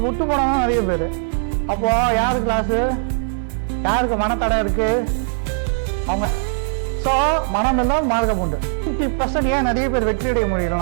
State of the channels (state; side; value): silent; left; 57 dB below the other